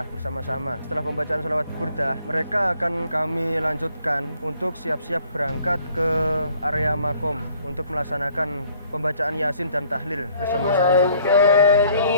bersama-sama. Setelah pembacaan salawat burdah, mereka akan kami lanjutkan untuk siap-siap berangkat ke area makom untuk melaksanakan pembacaan yasin dan tahlil bersama-sama.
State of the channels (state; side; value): inverted; both; correlation -0.61